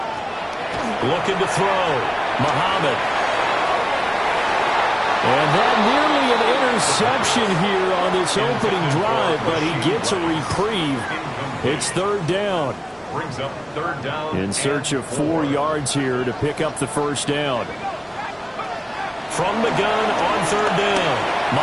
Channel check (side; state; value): both; identical; correlation 1.00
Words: Looking to throw. Muhammad. And that nearly an interception here on this opening drive, but he gets a reprieve. It's 3rd down. Brings up 3rd down. In search of 4 yards here to pick up the first down. From the gun on 3rd down.